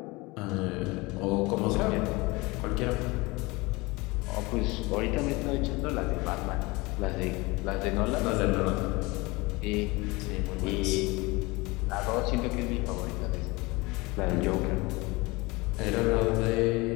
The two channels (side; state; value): right; quieter; 23.8 dB